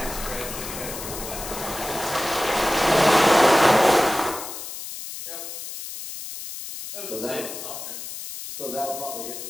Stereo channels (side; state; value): left; noise; hiss, 9 dB below the sound